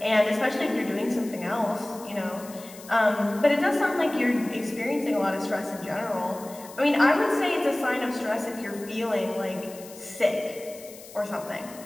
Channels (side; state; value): left; noise; hiss, 18 dB below the sound